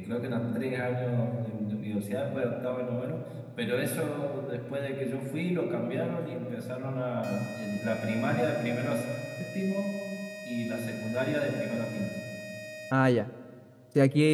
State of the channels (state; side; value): identical; both; correlation 1.00